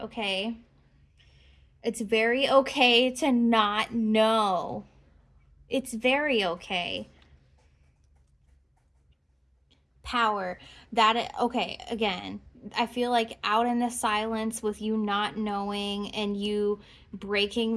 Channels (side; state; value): both; identical; correlation 1.00